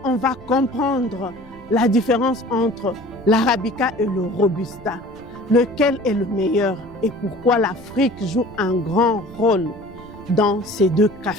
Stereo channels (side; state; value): right; noise; rumble, 19 dB below the sound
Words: on va comprendre la différence entre l'Arabica et le Robusta, lequel est le meilleur et pourquoi l'Afrique joue un grand rôle dans ces deux